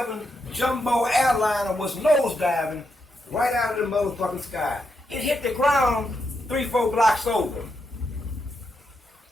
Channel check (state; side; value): normal; both; correlation 0.83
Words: jumbo airliner was nosediving right out of the motherfucking sky. It hit the ground 3-4 blocks over.